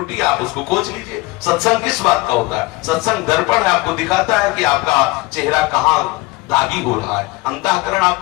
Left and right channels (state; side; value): quieter; right; 21.8 dB